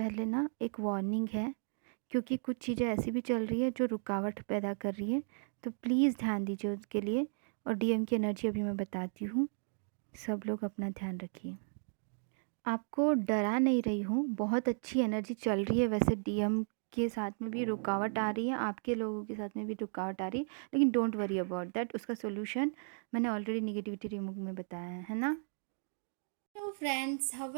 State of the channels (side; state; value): left; silent; digital silence